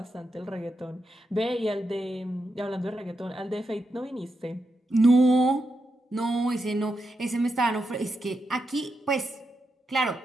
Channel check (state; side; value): normal; both; correlation 0.85